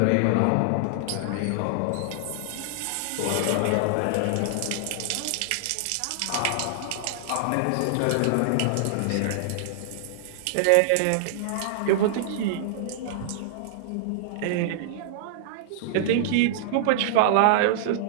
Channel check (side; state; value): both; different; correlation -0.01